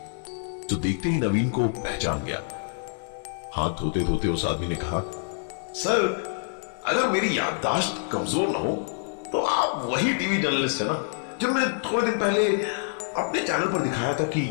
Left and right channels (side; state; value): right; silent; digital silence